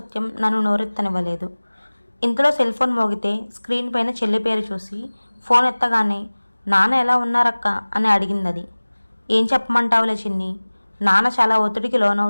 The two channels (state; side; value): inverted; both; correlation -1.00